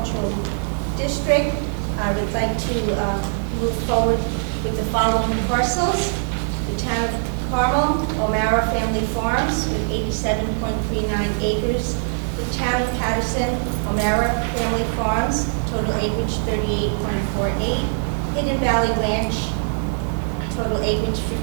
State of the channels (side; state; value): left; silent; 64 dB below the other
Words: District. I would like to move forward with the following parcels. The town of Carmel, O'Mara Family Farms with 87.39 acres. The town of Patterson, O'Mara Family Farms, total acreage 38.48. Hidden Valley Ranch, total acreage